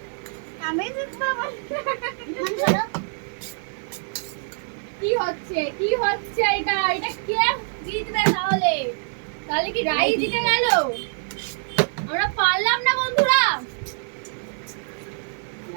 আমি বাবা কি হচ্ছে এটা এটা কে জিতবে তাহলে তাহলে কি রাই জিতে গেল আমরা পারলাম না বন্ধুরা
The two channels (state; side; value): silent; left; 62 dB below the other